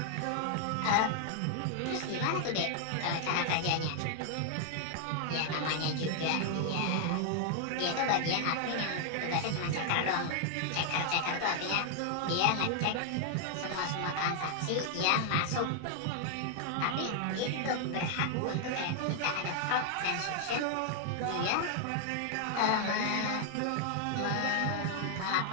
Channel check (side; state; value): both; different; correlation 0.00